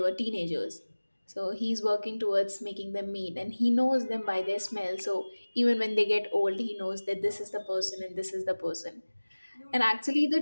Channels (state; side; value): inverted; both; correlation -1.00